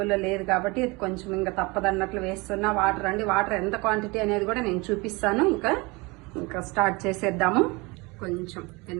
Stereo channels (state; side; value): quieter; left; 25.8 dB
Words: లేదు కాబట్టి ఇది కొంచెం ఇంకా తప్పదన్నట్లు వేస్తున్నా. వాటర్ అండి, వాటర్ ఎంత క్వాంటిటీ అనేది కూడా నేను చూపిస్తాను. ఇంకా స్టార్ట్ చేసేద్దాము. కొంచెం,